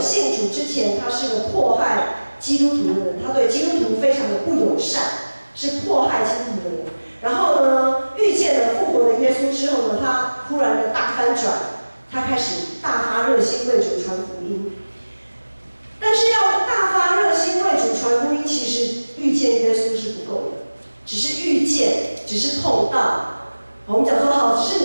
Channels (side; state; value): both; inverted; correlation -1.00